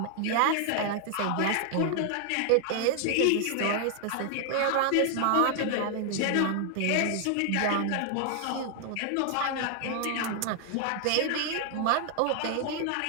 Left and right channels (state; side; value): different; both; correlation 0.00